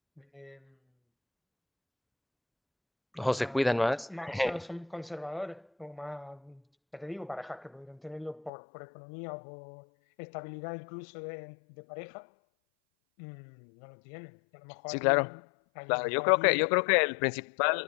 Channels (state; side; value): drops out; right; at 8.5 s